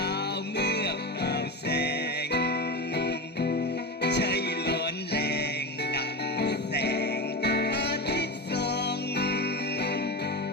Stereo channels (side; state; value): both; normal; correlation 0.22